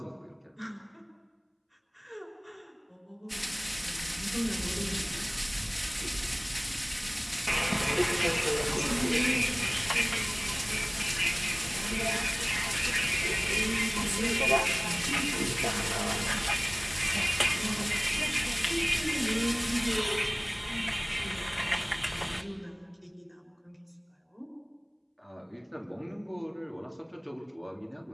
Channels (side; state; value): both; identical; correlation 1.00